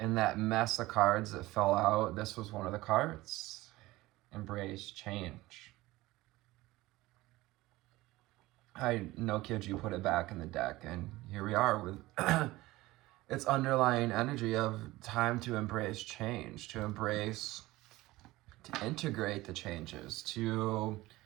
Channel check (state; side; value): quieter; left; 18.7 dB